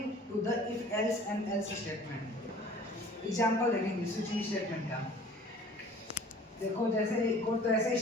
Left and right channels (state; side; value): normal; both; correlation 0.48